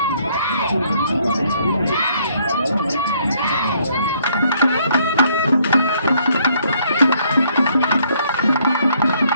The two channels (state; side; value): inverted; both; correlation -0.66